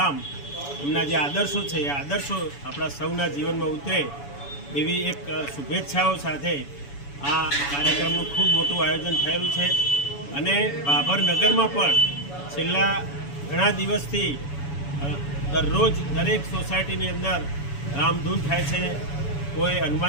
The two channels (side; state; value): right; late; 7.0 ms